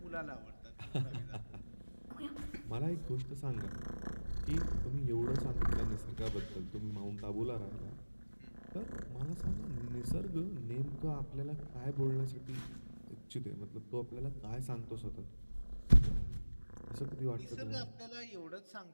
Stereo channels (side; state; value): both; inverted; correlation -1.00